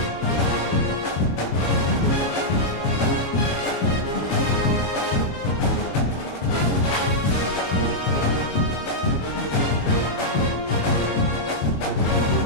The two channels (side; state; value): right; late; 21 ms